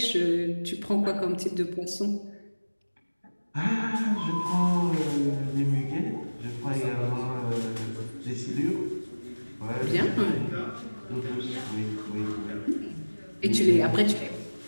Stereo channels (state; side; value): inverted; both; correlation -1.00